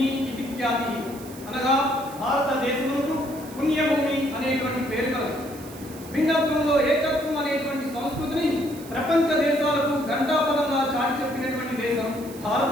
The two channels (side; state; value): right; noise; hiss, 18 dB below the sound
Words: ఇది ఖ్యాతి, అనగా భారతదేశమునకు పుణ్యభూమి అనేటువంటి పేరు కలదు. భిన్నత్వంలో ఏకత్వం అనేటువంటి సంస్కృతిని ప్రపంచ దేశాలకు గంటాపదంగా చాటి చెప్పినటువంటి దేశం